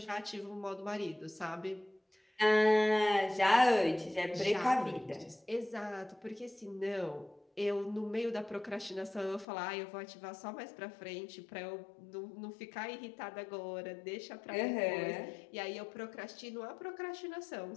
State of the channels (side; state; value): right; drops out; at 9.5 s